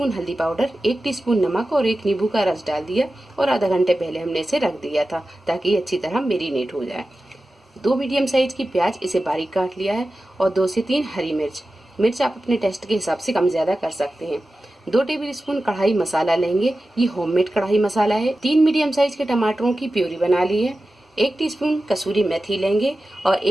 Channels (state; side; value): normal; both; correlation 0.94